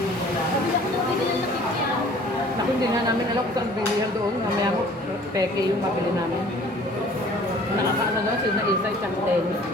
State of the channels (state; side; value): normal; both; correlation 0.51